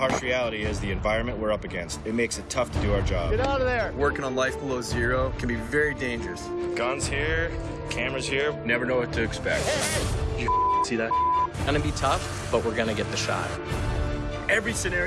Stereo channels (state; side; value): identical; both; correlation 1.00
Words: reality is the environment we're up against. It makes it tough to do our job. Get out of there! Working on life below zero can be very dangerous. Guns here, cameras here. Never know what to expect. You see that? Gonna be tough, but we're gonna get the shot. Every